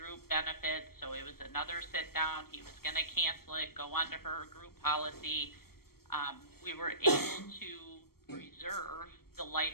benefits, so it was another sit down. He was going to cancel it, go on to her group policy. We were able to preserve the life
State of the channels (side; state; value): right; late; 0.95 ms